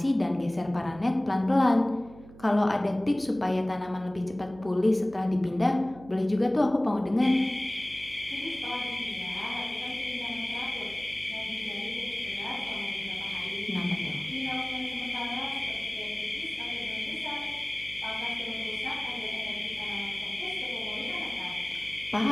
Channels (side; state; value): right; noise; hum, 19 dB below the sound